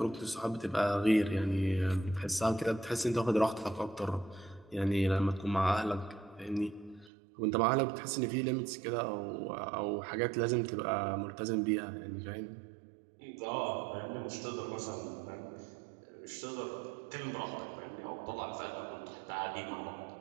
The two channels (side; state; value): left; drops out; at 7.1 s